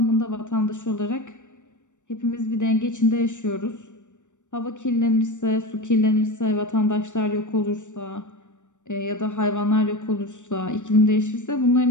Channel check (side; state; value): right; late; 0.85 ms